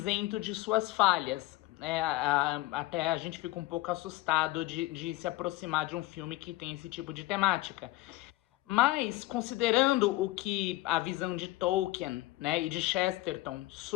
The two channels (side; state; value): right; quieter; 18.5 dB